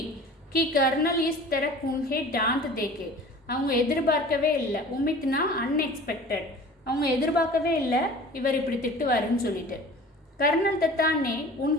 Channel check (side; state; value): both; normal; correlation 0.42